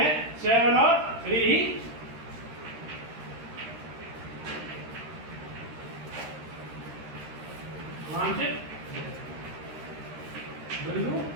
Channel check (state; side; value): late; left; 13 ms